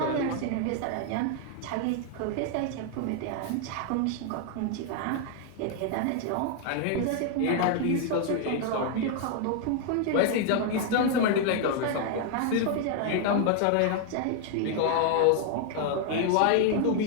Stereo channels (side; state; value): both; different; correlation 0.00